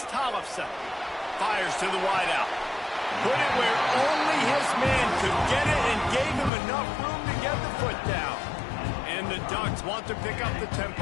Tollefson. Fires to the wideout. Put it where only his man could get it and gave him enough room to get the foot down. And the Ducks want to pick up the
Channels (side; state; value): right; drops out; at 6.5 s